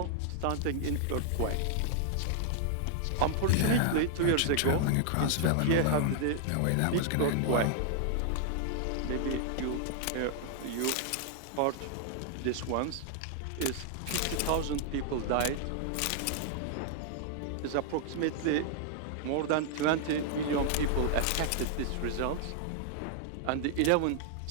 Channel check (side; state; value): both; different; correlation 0.00